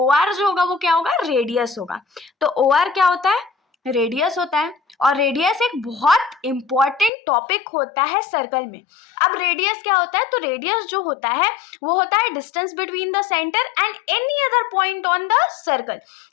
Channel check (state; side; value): drops out; right; at 7.1 s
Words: आर जो होगा वो क्या होगा? रेडियस होगा। तो ओ आर क्या होता है? रेडियस होता है। और रेडियस एक बहुत इंपॉर्टेंट टॉपिक होता है सर्कल में। अब रेडियस क्या होता है? तो रेडियस जो होता है वो होता है distance between the centre and any other point on the circle.